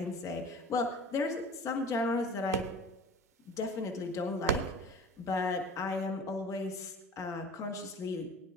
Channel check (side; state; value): both; normal; correlation 0.40